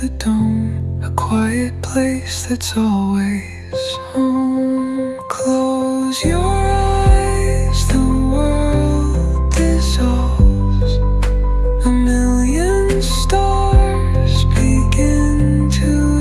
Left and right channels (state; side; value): identical; both; correlation 1.00